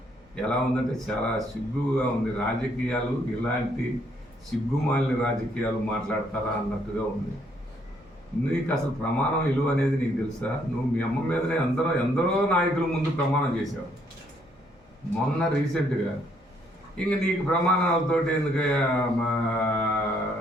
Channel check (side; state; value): both; normal; correlation 0.69